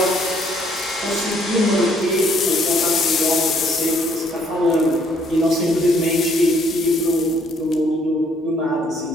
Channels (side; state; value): both; normal; correlation 0.65